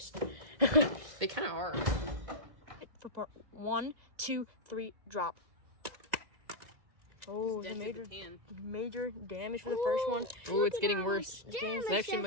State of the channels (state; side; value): late; left; 2.0 ms